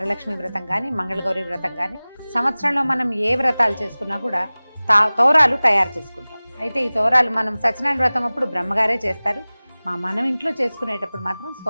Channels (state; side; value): inverted; both; correlation -0.99